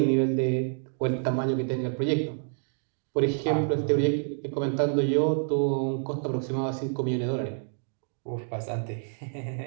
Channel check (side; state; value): left; silent; 59 dB below the other